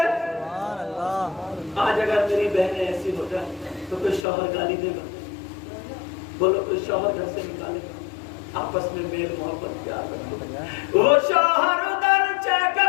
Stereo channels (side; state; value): right; drops out; at 4.2 s